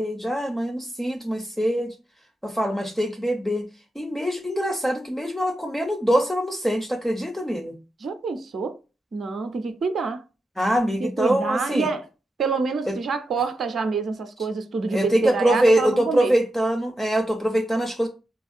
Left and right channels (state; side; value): normal; both; correlation 0.88